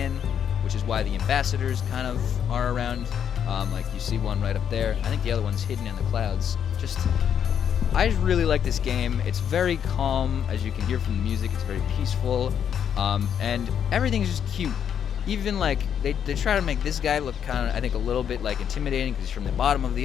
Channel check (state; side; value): quieter; right; 8.5 dB